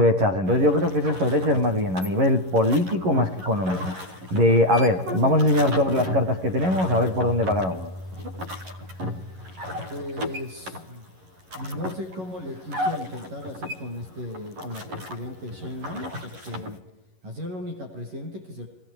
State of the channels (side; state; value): left; late; 11 ms